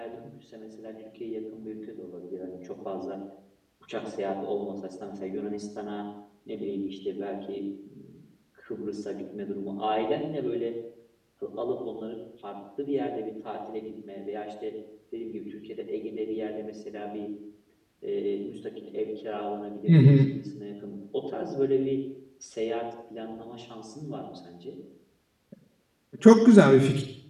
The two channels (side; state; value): both; identical; correlation 1.00